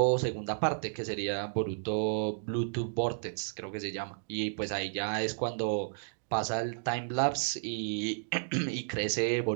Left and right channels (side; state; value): left; silent; 56 dB below the other